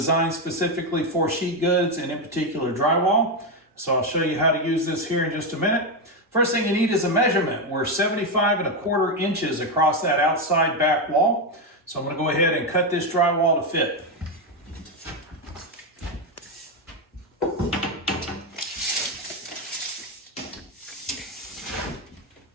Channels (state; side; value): normal; both; correlation 0.08